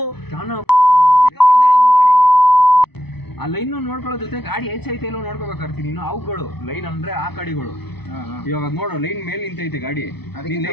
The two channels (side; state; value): right; late; 0.98 ms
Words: ಆ ಲೈನ್ ನೋಡ್ಕೊಳ್ಳೋ ಜೊತೆ ಗಾಡಿ ಹೆಚ್ಚೈತೆ ಇಲ್ಲೋ ನೋಡ್ಕೋಬೇಕಾಗ್ತೀನಿ ನೀನು ಅವುಗಳು ಲೈನ್ ಅಂದ್ರೆ ಆ ಕಡೆಗಳು ಇವಾಗ ನೋಡು ಲೈನ್ ಮೇಲೆ ನಿಂತೈತೆ ಗಾಡಿ